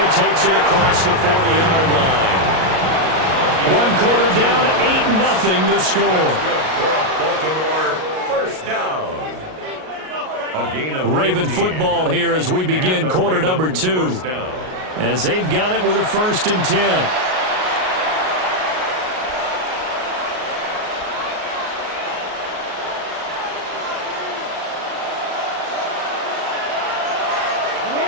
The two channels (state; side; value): late; left; 38 ms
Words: takes it across the 40-yard line. 1 quarter down, 8-0 the score. Good for a Baltimore first down. A gain of Raven 15. football here as we begin quarter number 2. As they've got it with a 1st and 10.